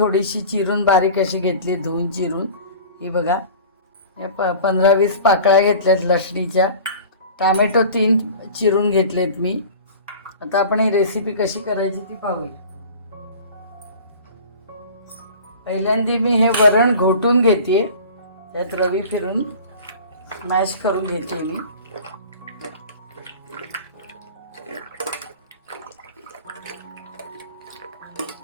चिरून बारीक अशी घेतली, धुवून चिरून। ही बघा, हे 15-20 पाकळ्या घेतल्यात लसणीच्या। टोमॅटो 3 चिरून घेतलेत मी। आता आपण ही रेसिपी कशी करायची ती पाहूया। पहिल्यांदा मी हे वरण घोटून घेते, त्यात रवी फिरून मॅश करून घेते मी।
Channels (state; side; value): inverted; both; correlation -0.40